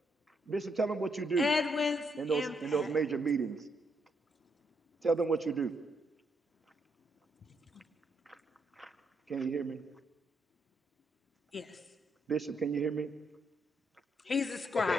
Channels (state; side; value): normal; both; correlation 0.76